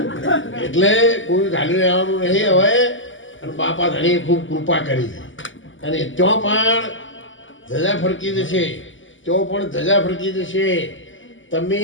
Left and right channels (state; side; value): late; right; 0.56 ms